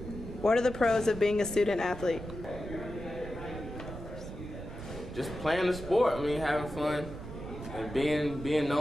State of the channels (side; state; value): right; noise; rumble, 10 dB below the sound